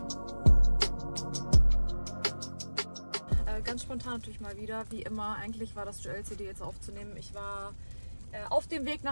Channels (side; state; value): both; inverted; correlation -1.00